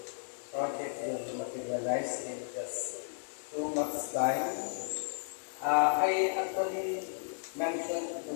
project will materialize in just 2 months' time. I actually mentioned to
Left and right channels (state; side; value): silent; right; digital silence